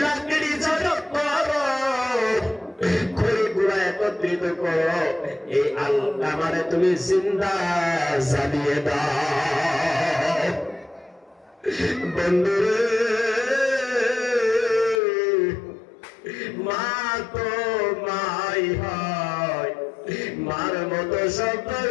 লাকড়ি জড়ো করো খড়ি গুড়া একত্রিত করো এই আলকামারে তুমি জিন্দা জ্বালিয়ে দাও বন্ধুরে মা তো মাই হয় মার মতো শব্দ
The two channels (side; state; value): right; drops out; at 15.0 s